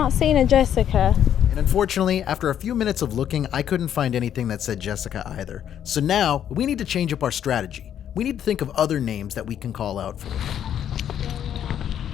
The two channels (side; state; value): right; quieter; 9.8 dB